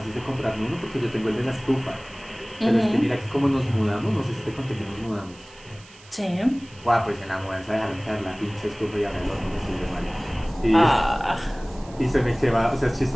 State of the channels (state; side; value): noise; right; hiss, 23 dB below the sound